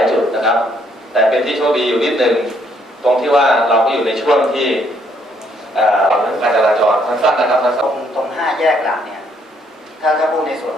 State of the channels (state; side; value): normal; both; correlation 0.69